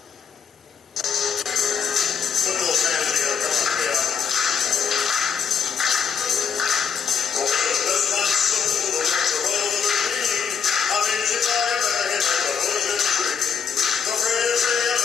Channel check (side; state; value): right; quieter; 6.8 dB